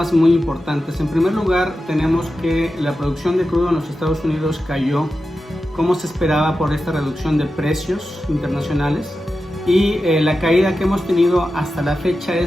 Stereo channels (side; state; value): both; normal; correlation 0.92